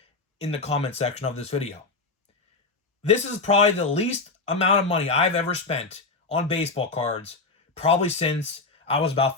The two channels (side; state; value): right; quieter; 3.7 dB